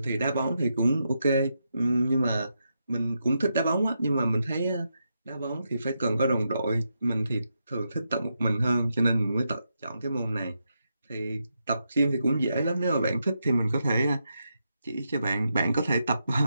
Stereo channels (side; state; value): both; inverted; correlation -0.84